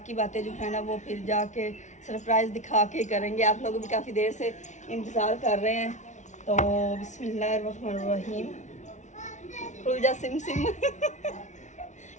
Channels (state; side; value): late; right; 0.35 ms